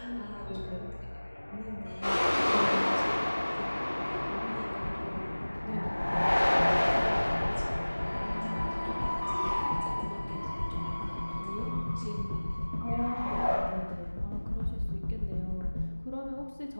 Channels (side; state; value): both; inverted; correlation -1.00